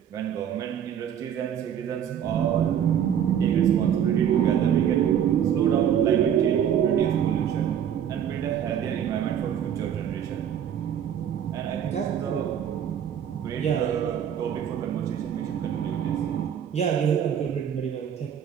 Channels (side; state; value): left; quieter; 9.1 dB